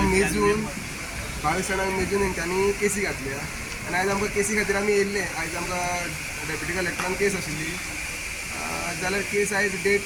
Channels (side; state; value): both; identical; correlation 1.00